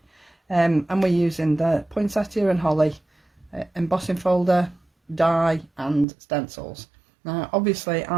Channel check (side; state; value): left; drops out; at 6.1 s